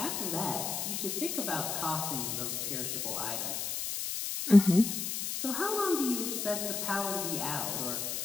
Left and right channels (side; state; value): left; noise; hiss, 2 dB below the sound